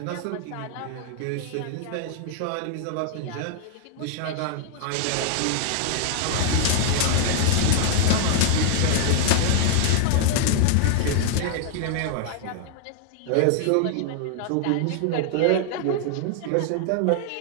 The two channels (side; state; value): both; different; correlation -0.01